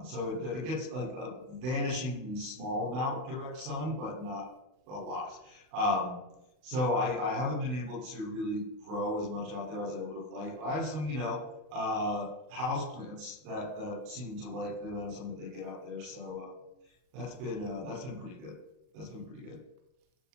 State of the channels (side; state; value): left; late; 39 ms